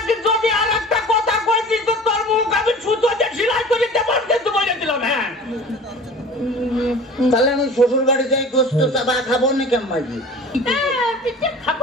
যদি আর একটা কথা কইছিস তো তোর মুখ আমি ছুতো দিয়ে সেলাই করে দেবার কিন্তু বলে দিলাম। হ্যাঁ, তাহলে আমি শ্বশুর বাড়ি যাই গোস্ত চাবা খাবো না কেমন? পিঠে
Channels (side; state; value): both; normal; correlation 0.41